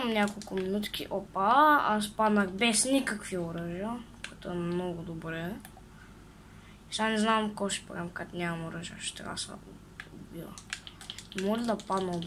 няколко минутки. Опа, аз паднах без никакви оръжия, което е много добре. Сега не знам какво ще правим, като нямам оръжия, ще трябва да се убива. Може да падна от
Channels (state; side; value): identical; both; correlation 1.00